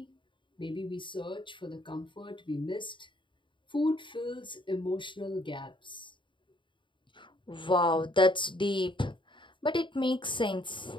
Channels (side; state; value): right; late; 0.23 ms